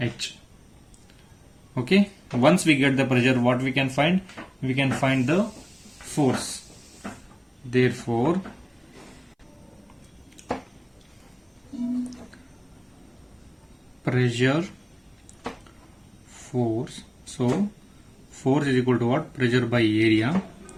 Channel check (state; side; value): identical; both; correlation 1.00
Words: Okay, once we get the pressure, what we can find? We can find the force. Therefore, pressure, force. So force is equal to what? Pressure by area.